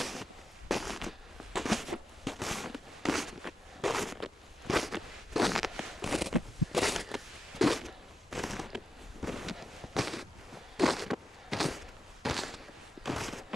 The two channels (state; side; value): normal; both; correlation 0.88